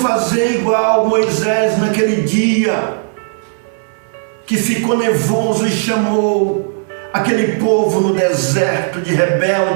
igual Moisés naquele dia, que ficou nervoso e chamou aquele povo no deserto de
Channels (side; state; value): left; silent; digital silence